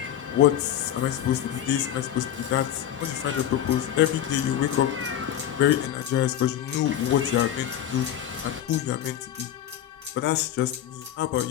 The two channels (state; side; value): quieter; right; 10.8 dB